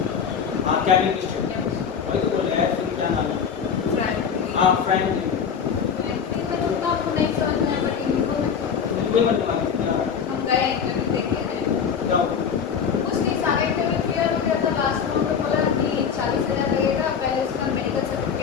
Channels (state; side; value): quieter; right; 7.0 dB